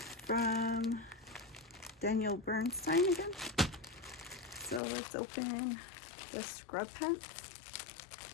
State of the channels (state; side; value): drops out; right; at 4.8 s